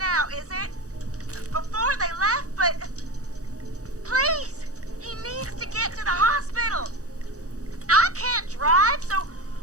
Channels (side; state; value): left; late; 0.66 ms